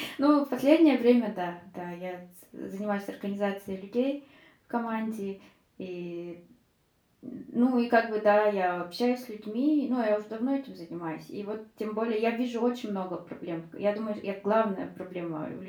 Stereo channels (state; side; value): identical; both; correlation 1.00